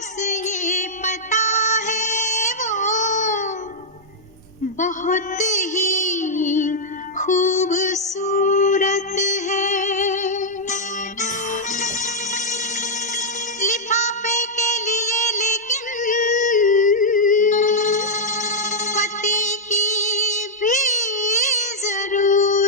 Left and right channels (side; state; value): both; normal; correlation -0.06